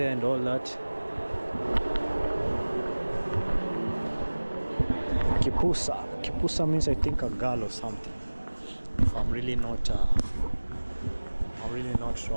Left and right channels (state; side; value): inverted; both; correlation -1.00